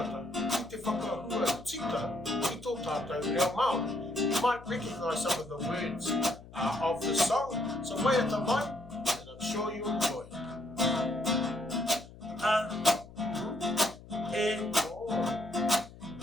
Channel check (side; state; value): left; noise; hum, 18 dB below the sound